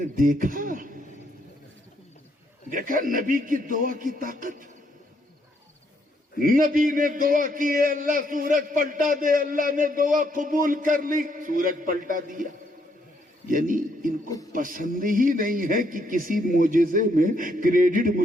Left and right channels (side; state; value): both; normal; correlation 0.73